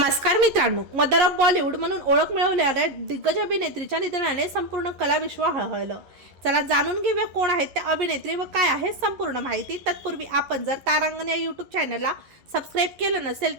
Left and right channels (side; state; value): left; late; 11 ms